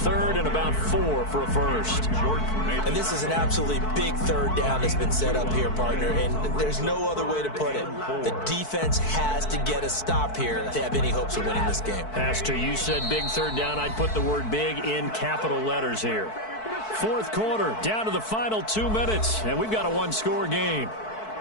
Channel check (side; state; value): right; late; 4.6 ms